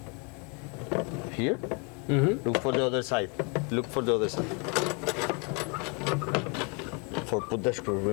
here. Look for the other side. Look for the other side. For put the screw.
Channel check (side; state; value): right; quieter; 33.6 dB